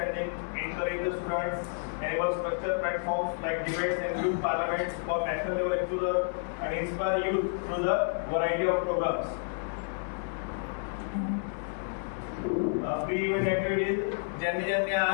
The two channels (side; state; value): right; silent; digital silence